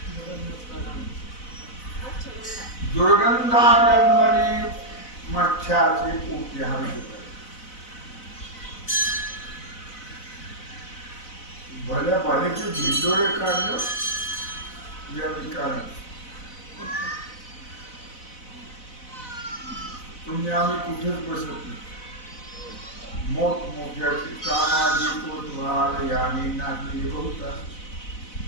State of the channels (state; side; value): late; right; 4.0 ms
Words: दुर्गंधागंमनी मच्छाचे पोटी हा विषय. भल्या भल्याचे ढिंडोरे काढलं या विकाराने. तुम्ही आम्ही कुठेच बसत नाही. मोठमोठ्याचे सामाजिक कोतवाल याने नाचले बहुता.